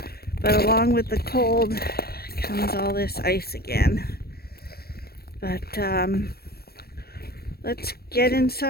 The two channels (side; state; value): right; late; 0.45 ms